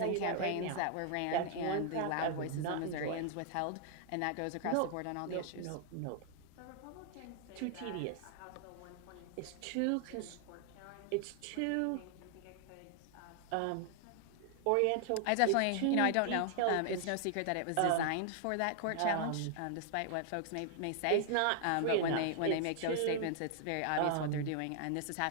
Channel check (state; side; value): different; both; correlation 0.00